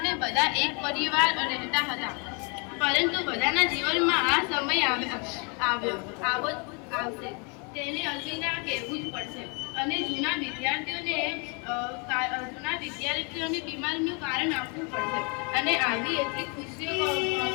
બધા એક પરિવાર રહેતા હતા. પરંતુ બધાના જીવનમાં આ સમય આવશે, તેને અલવિદા કહેવું જ પડશે. અને જૂના વિદ્યાર્થીઓને બીમારીનું કારણ આપવું પડશે. અને આવી એટલી ખુશીઓ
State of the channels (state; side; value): quieter; right; 34.1 dB